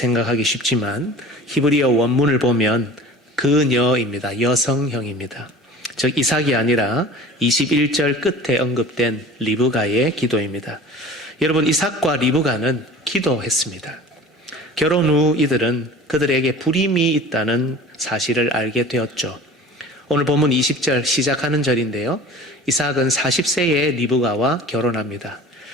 쉽지만 히브리어 원문을 보면 그녀입니다. 여성형입니다. 즉 이삭이 아니라 21절 끝에 언급된 리브가의 기도입니다. 여러분 이삭과 리브가는 기도했습니다. 결혼 후 이들은 그들에게 불임이 있다는 사실을 알게 되었죠. 오늘 본문 20절 시작하는 절인데요. 이삭은 40세에 리브가와 결혼합니다.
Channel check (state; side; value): normal; both; correlation 0.41